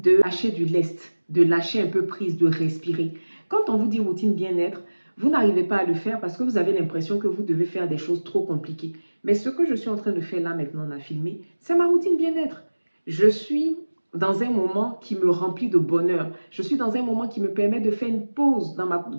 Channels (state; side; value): inverted; both; correlation -1.00